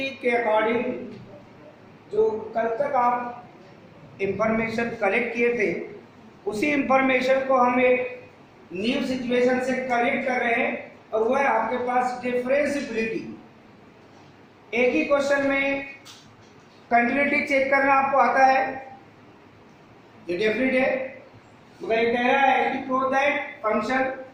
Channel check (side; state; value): both; identical; correlation 1.00